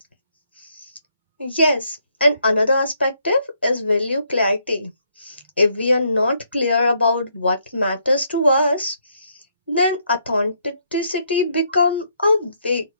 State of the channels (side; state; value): both; inverted; correlation -0.72